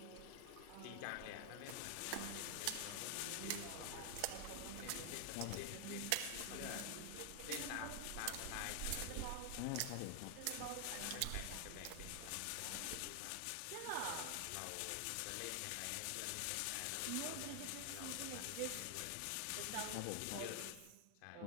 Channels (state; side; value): different; both; correlation 0.00